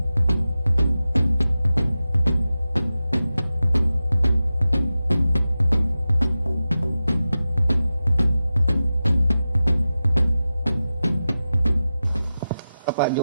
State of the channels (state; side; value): inverted; both; correlation -0.93